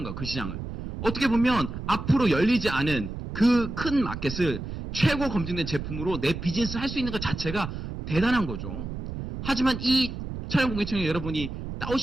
거예요. 그 시장을. 어떻게 보면 앞으로 열리지 않은 그 큰 마켓을 최고 검증된 제품으로 내 비즈니스 할 수 있는 것 자체가 대단한 거죠. 하지만 이 차량 공기청정기 여러분이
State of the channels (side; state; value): right; noise; rumble, 7 dB below the sound